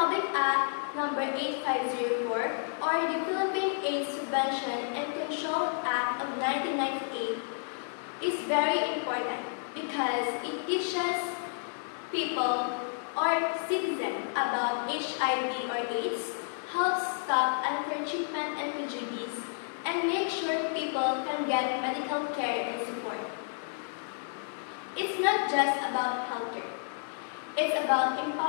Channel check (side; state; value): right; silent; digital silence